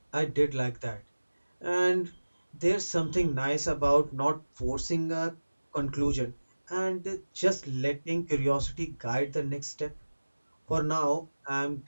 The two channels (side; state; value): both; inverted; correlation -1.00